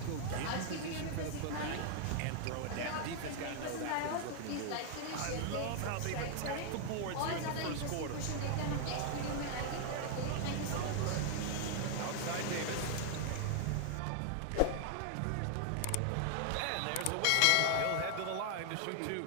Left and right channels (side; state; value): both; different; correlation 0.00